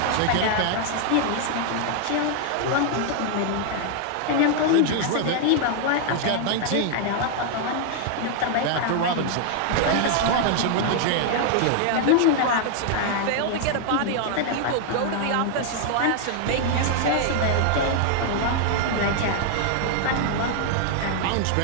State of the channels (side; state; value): both; different; correlation 0.00